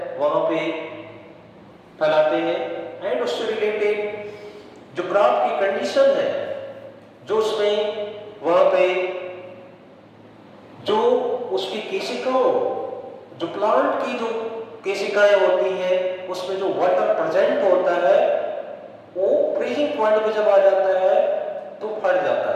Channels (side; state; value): both; identical; correlation 1.00